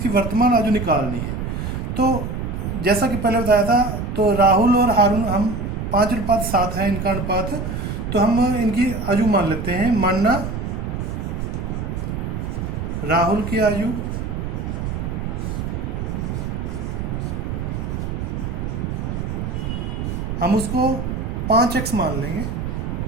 वर्तमान आयु निकालनी है। तो जैसा कि पहले बताया था, तो राहुल और हारून हम 5:7 है इनका अनुपात, तो हम इनकी आयु मान लेते हैं। मानना राहुल की आयु हम उसको 5x मान लेंगे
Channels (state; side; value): noise; right; rumble, 4 dB below the sound